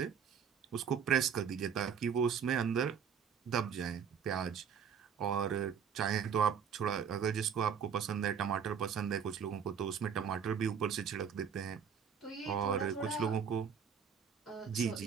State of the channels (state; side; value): quieter; left; 7.2 dB